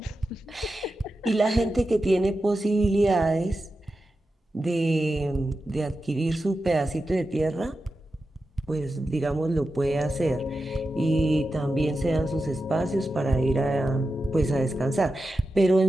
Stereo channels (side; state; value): both; normal; correlation 0.91